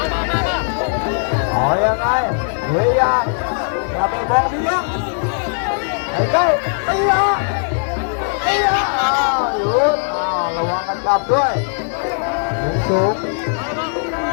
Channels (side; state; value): right; silent; digital silence